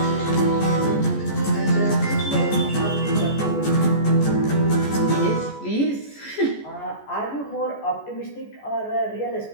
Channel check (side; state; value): right; late; 14 ms